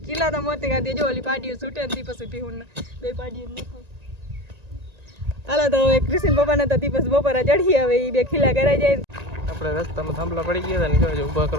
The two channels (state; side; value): late; left; 1.9 ms